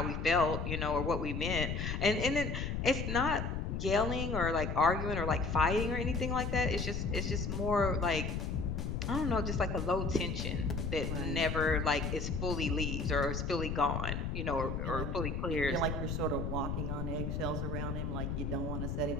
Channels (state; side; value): noise; left; rumble, 2 dB below the sound